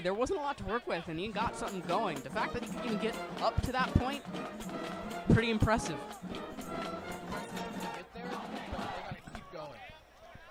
There wasn't a lot to work with, and he got something going. The fact that he can get up to that point, pretty impressive. Impressive to see them get there, but they got to keep going.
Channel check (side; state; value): both; identical; correlation 1.00